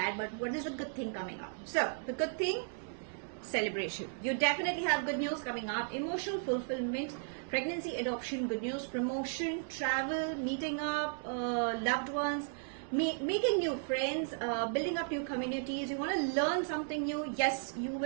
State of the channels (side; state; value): left; silent; digital silence